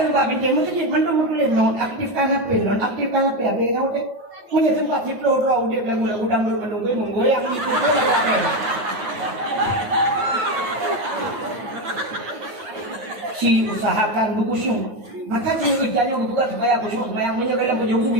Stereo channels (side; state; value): left; late; 9.5 ms